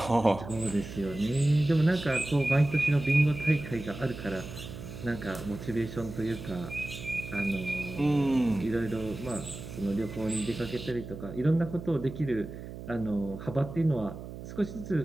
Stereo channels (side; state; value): right; noise; hum, 11 dB below the sound